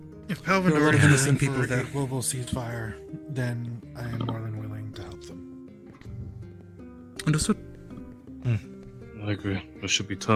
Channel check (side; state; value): both; identical; correlation 1.00